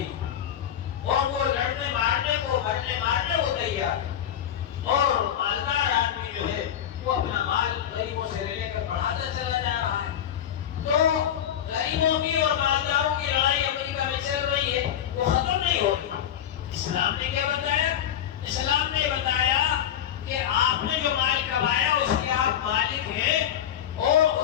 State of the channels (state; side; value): quieter; right; 10.1 dB